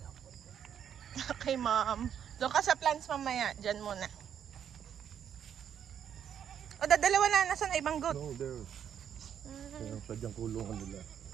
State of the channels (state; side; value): quieter; left; 8.8 dB